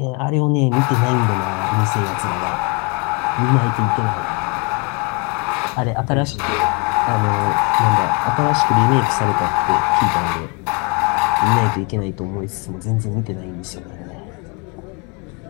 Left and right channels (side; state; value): right; quieter; 32.1 dB